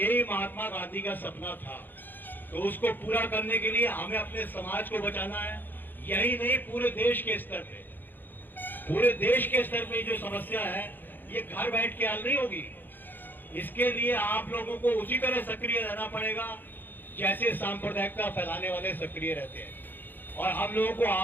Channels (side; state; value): right; late; 0.091 ms